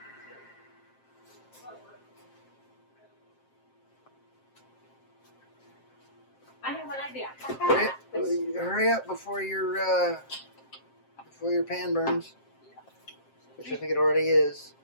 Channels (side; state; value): right; late; 7.6 ms